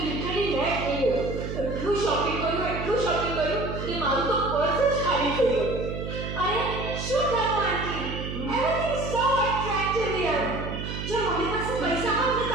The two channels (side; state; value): right; noise; hum, 6 dB below the sound